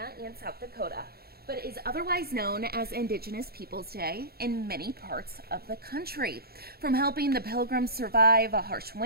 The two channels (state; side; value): late; left; 0.45 ms